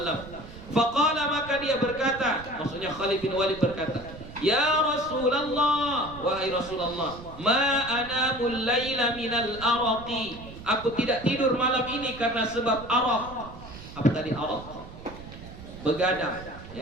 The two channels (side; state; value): right; noise; rumble, 15 dB below the sound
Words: Faqala, maka dia berkata, maksudnya Khalid bin Walid berkata, ya Rasulullah, wahai Rasulullah, ma anamul laila minal araqi, aku tidak tidur malam ini karena sebab araq. Apa tadi araq? Begadang,